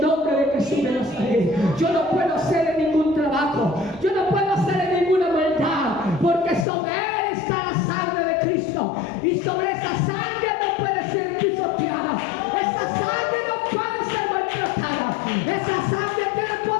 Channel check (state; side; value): drops out; right; at 6.7 s